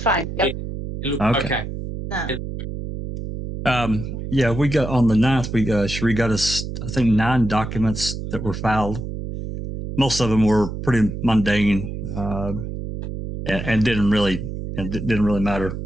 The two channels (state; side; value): noise; right; hum, 7 dB below the sound